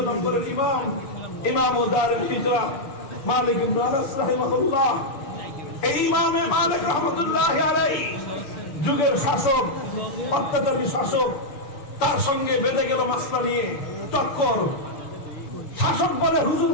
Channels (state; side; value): late; right; 6.8 ms